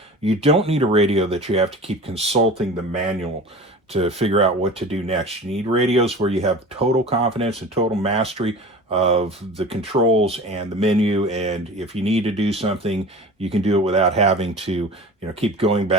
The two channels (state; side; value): normal; both; correlation 0.37